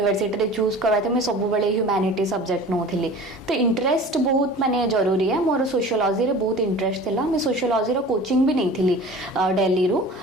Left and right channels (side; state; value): both; normal; correlation 0.41